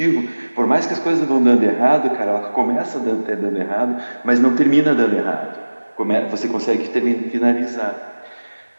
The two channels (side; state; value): both; inverted; correlation -1.00